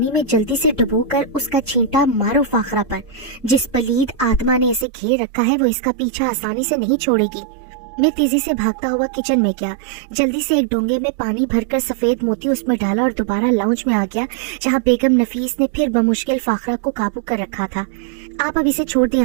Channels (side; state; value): left; drops out; at 4.9 s